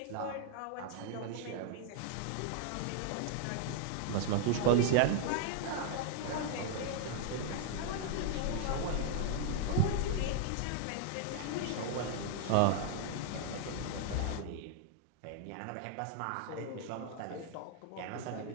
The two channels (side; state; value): both; different; correlation 0.00